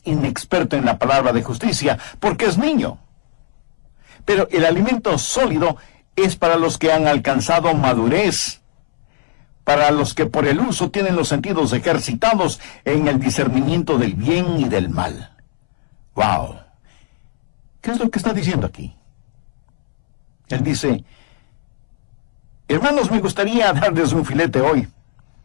inexperto en la palabra de justicia, porque es niño. Pero el alimento sólido es para los que han alcanzado madurez, para los que por el uso tienen los sentidos ejercitados en el discernimiento del bien y del mal. ¡Wow! ¿Qué es lo que está diciendo aquí? Él dice: hermanos, me gustaría darles un filete hoy,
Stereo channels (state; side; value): silent; right; 67 dB below the other